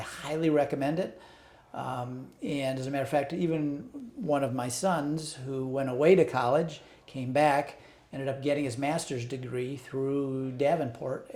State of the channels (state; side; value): identical; both; correlation 1.00